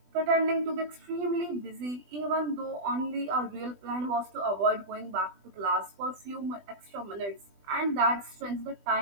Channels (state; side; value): late; left; 20 ms